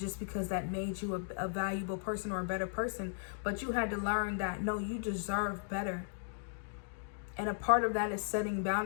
because that made you a valuable person or a better person. But you had to learn that, no, you deserve better. And a part of that is setting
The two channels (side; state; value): right; silent; digital silence